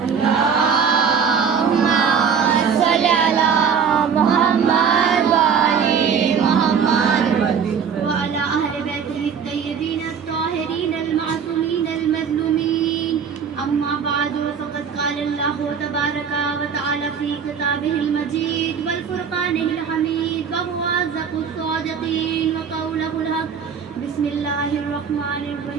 اللهم صل على محمد وآل محمد وعلى أهل بيته الطيبين الطاهرين المعصومين المظلومين. أما بعد فقد قال الله تبارك وتعالى في كتابه المجيد والفرقانه الحميد وهو أصدق الصادقين وقوله الحق. بسم الله الرحمن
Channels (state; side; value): quieter; left; 6.8 dB